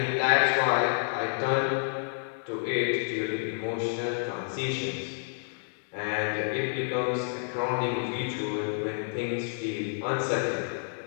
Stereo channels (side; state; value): right; silent; 58 dB below the other